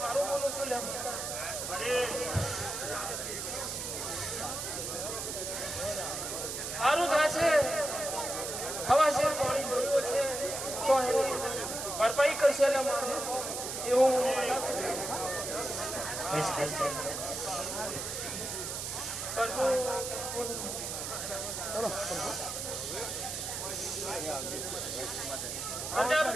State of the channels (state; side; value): noise; right; hiss, 4 dB below the sound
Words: બોલું છું લે સારું થા છે હવા છે પાણી જોયું છે તો એની ભરપાઈ કરશે એટલે મારે એવું